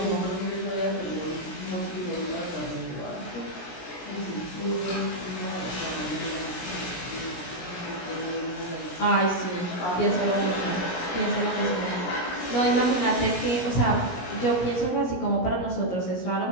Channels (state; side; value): late; right; 17 ms